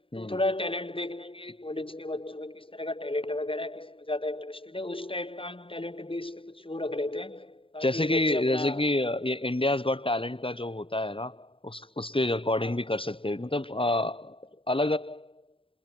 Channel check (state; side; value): late; right; 0.26 ms